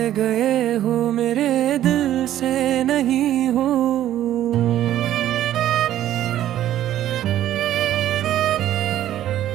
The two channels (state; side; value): quieter; left; 12.3 dB